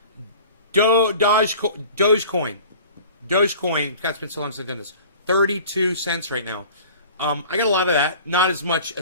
Dogecoin. God's been so long since I've done this. 32 cents right now. I got a lot of that. Not as much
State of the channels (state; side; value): inverted; both; correlation -0.43